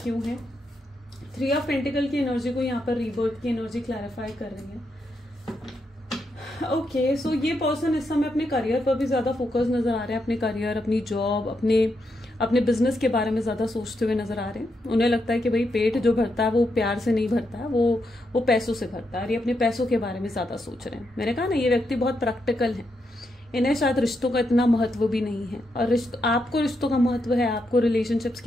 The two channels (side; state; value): both; normal; correlation 0.82